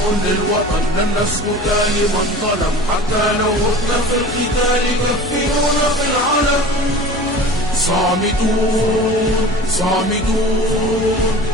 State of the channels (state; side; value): normal; both; correlation 0.39